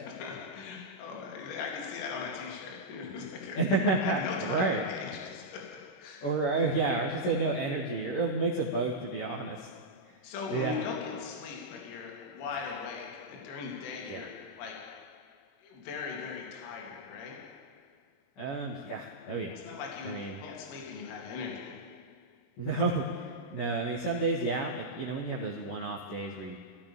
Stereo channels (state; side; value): late; right; 21 ms